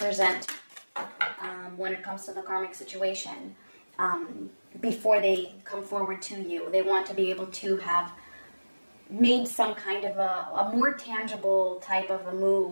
when it comes to the karmic situation. Before they come forward to you, they want to be able to have made some kind of a more tangible type of a move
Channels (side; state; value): both; inverted; correlation -1.00